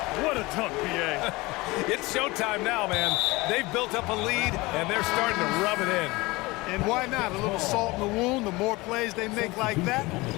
what a dunk, BA. It's showtime now, man. They've built up a lead, and they're starting to rub it in. And why not? A little salt in the wound. The more plays they make like that,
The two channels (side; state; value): right; quieter; 22.4 dB